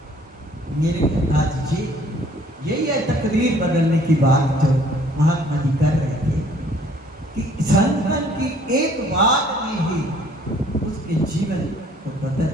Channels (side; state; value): both; normal; correlation 0.58